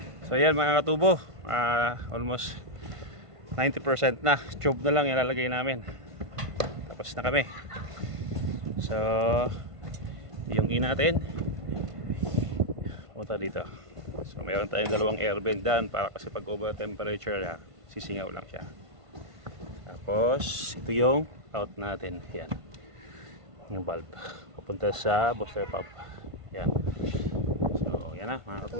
So yan mga katubo, almost 90% na. Tube na lang ilalagay namin. Tapos na kami. So yung in natin punta dito. So mayroon tayong dalawang air vent dyan para kasi pag over temperature sisingaw lang siya. Tapos ito yung out natin. Yan, yung valve papunta sa booster pump. Yan. So yan na mga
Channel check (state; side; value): late; left; 1.5 ms